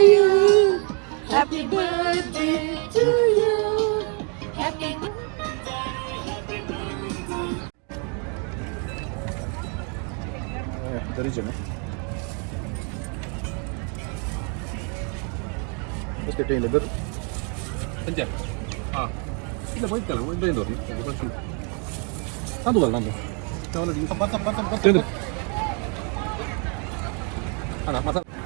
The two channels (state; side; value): quieter; left; 37.2 dB